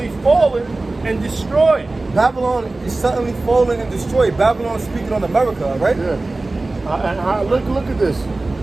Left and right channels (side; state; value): left; quieter; 3.1 dB